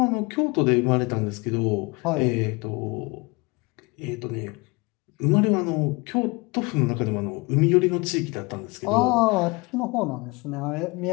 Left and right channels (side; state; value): right; quieter; 26.3 dB